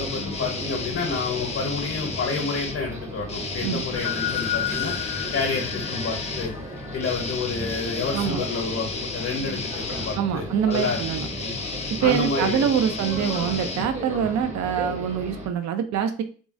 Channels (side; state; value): both; normal; correlation 0.15